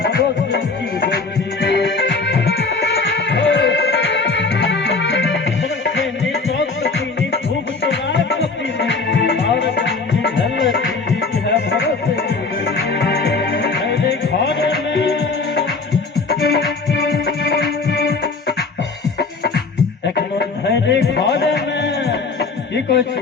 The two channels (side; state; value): right; quieter; 4.1 dB